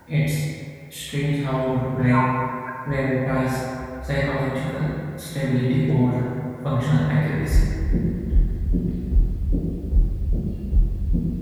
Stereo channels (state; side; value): identical; both; correlation 1.00